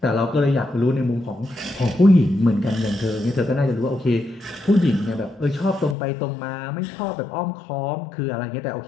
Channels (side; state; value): right; drops out; at 6.0 s